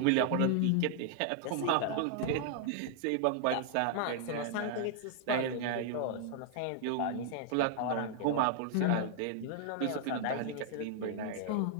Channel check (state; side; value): different; both; correlation 0.00